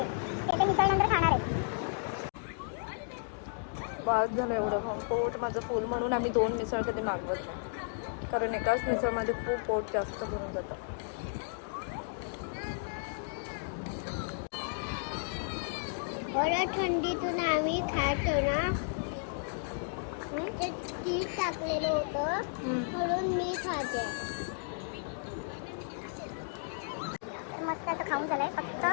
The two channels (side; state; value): right; silent; digital silence